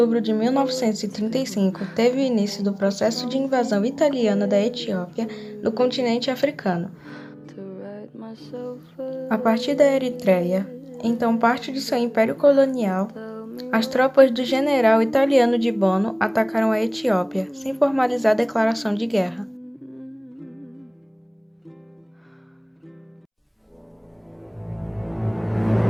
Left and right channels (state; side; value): identical; both; correlation 1.00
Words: de 1935, teve o início do processo de invasão italiana da Etiópia no continente africano. A partir da Eritreia, então parte de seu império colonial, as tropas do general italiano de Bono atacaram a Etiópia, sem formalizar declaração de guerra.